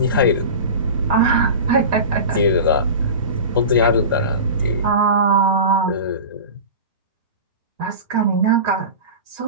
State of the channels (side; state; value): both; inverted; correlation -0.30